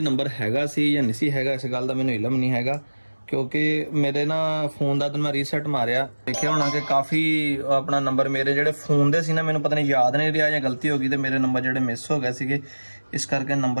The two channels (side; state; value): both; inverted; correlation -1.00